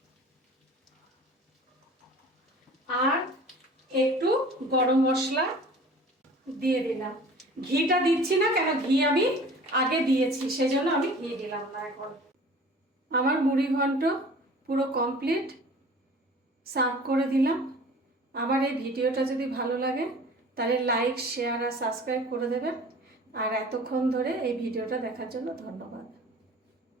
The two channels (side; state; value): both; normal; correlation 0.45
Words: আর একটু গরম মশলা দিয়ে দিলাম। ঘিটা দিচ্ছি না, কেন ঘি আমি আগে দিয়েছি, সেজন্য আমি ঘি দিলাম না এখন। আমার মুড়ি ঘন্ট পুরো কমপ্লিট, সার্ভ করে দিলাম। আমার এই ভিডিওটা যদি ভালো লাগে তাহলে লাইক, শেয়ার আর সাবস্ক্রাইব করে দেবেন। আর এতক্ষণ ধরে এই ভিডিওটা দেখার জন্য ধন্যবাদ।